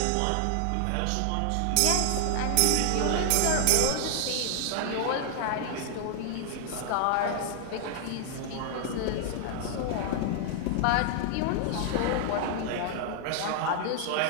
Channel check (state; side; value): different; both; correlation 0.00